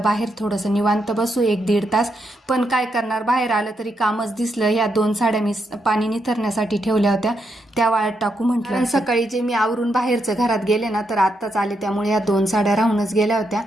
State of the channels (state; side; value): normal; both; correlation 0.81